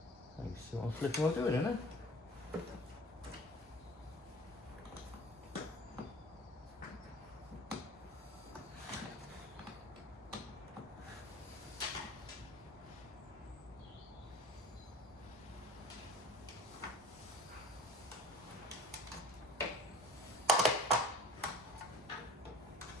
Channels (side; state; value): both; normal; correlation 0.43